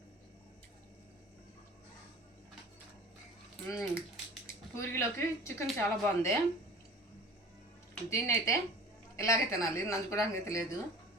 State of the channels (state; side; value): normal; both; correlation 0.41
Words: పూరీలోకి చికెన్ చాలా బాగుంది. దీన్ని అయితే ఇలాగే తినాలి, నంచుకోవడానికి అయితే లేదు.